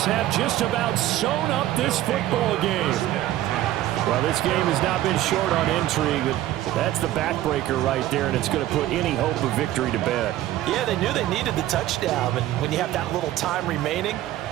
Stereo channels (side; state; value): left; quieter; 14.1 dB